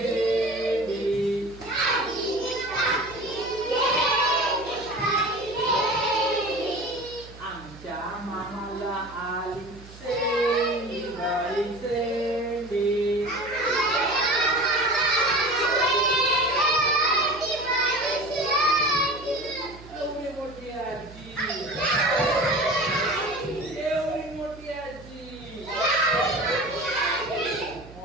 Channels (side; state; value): right; noise; hum, 18 dB below the sound